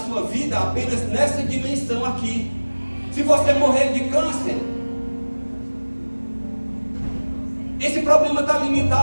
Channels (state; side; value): inverted; both; correlation -1.00